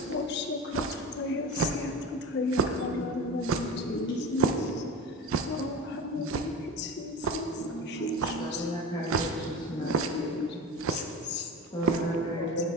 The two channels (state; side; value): normal; both; correlation 0.30